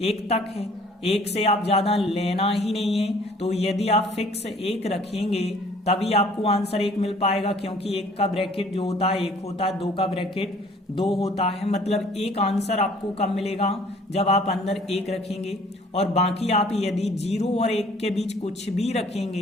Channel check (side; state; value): both; normal; correlation 0.55